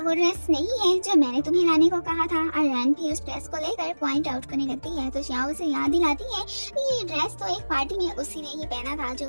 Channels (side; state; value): both; inverted; correlation -1.00